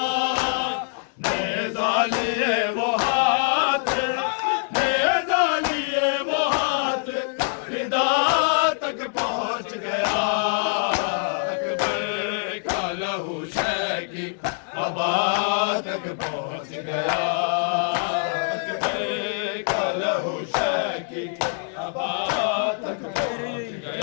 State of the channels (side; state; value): right; silent; digital silence